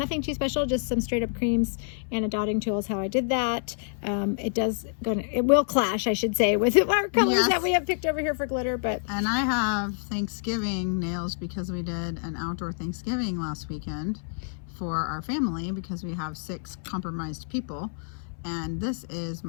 too special, just some straight up creams and a dotting tool is how I did that. It will clash, I should say, with our colors that we have picked over here for glitter. And I have Thanksgiving nails because we did an outdoor Thanksgiving last weekend for our family because we have 6 compromised people. And this is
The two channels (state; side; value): silent; right; 60 dB below the other